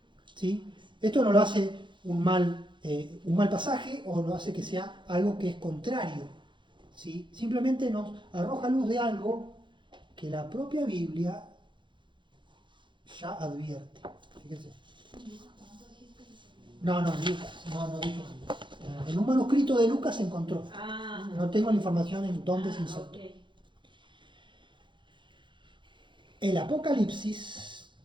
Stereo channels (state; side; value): late; left; 0.23 ms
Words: ¿Sí? Esto no lo hace un mal pasaje o lo hace que sea algo que es contrario. ¿Sí? Simplemente nos arroja luz de algo que la propia Biblia ya advierte. Fíjense. No, Lucas, no dijo. En un manuscrito de Lucas se encontró. No tengo la información en dónde se insertó. Okay. El Apocalipsis,